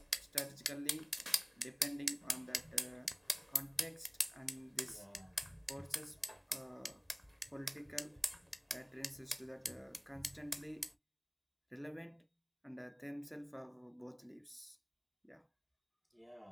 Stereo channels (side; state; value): both; identical; correlation 1.00